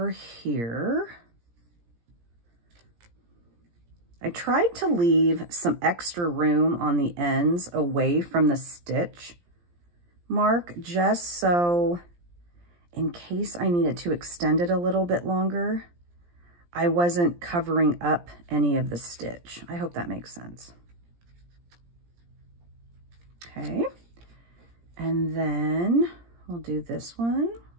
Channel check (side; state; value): left; late; 17 ms